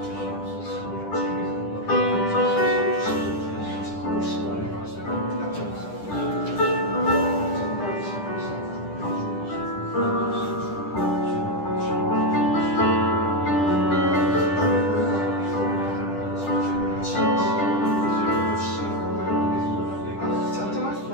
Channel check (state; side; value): late; right; 10 ms